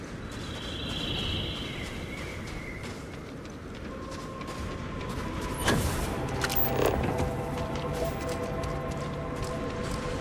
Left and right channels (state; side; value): identical; both; correlation 1.00